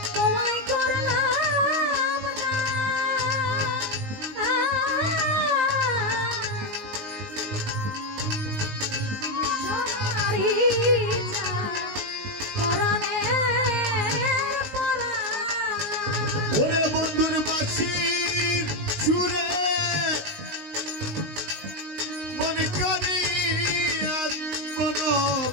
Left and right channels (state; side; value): late; left; 19 ms